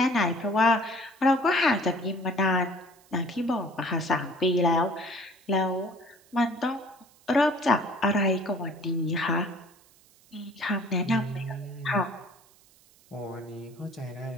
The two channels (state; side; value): noise; right; hiss, 29 dB below the sound